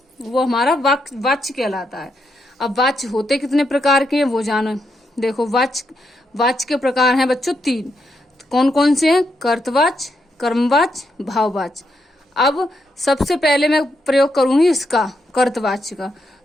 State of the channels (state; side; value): normal; both; correlation 0.81